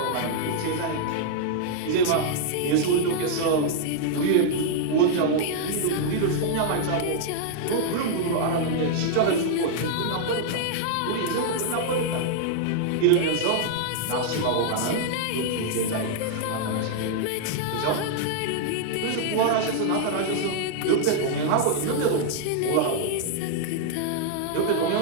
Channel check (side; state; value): both; different; correlation -0.01